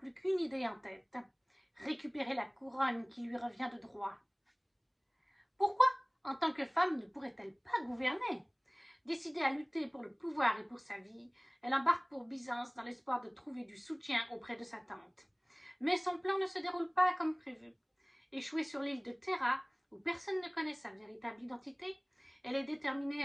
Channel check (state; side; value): identical; both; correlation 1.00